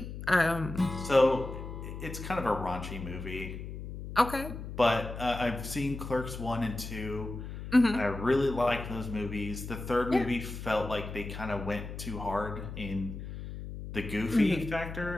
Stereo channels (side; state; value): left; noise; hum, 9 dB below the sound